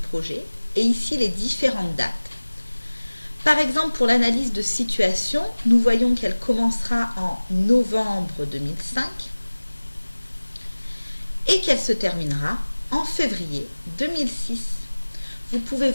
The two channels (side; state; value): both; inverted; correlation -1.00